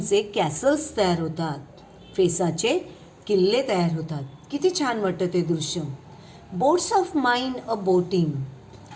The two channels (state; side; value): identical; both; correlation 1.00